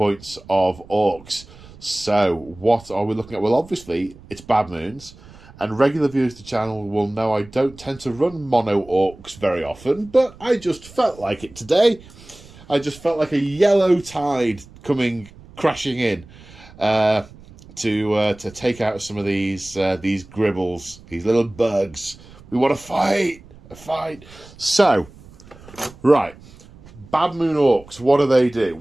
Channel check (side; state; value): right; noise; rumble, 22 dB below the sound